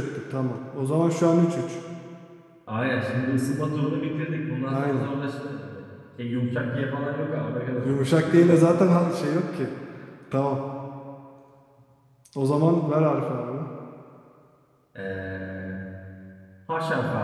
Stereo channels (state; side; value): identical; both; correlation 1.00